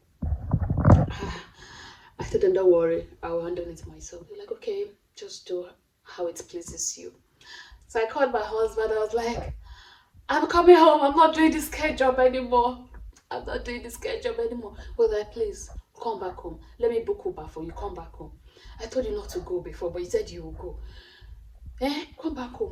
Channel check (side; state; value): both; identical; correlation 1.00